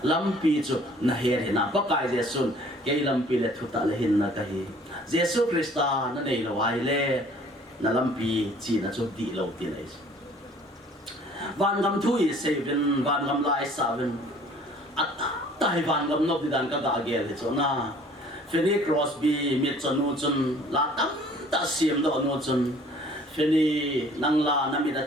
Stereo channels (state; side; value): normal; both; correlation 0.53